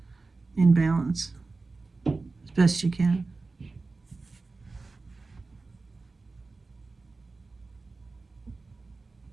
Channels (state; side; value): quieter; left; 3.7 dB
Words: balance as best you can.